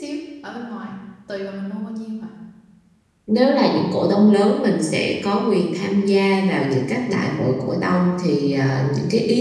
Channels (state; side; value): identical; both; correlation 1.00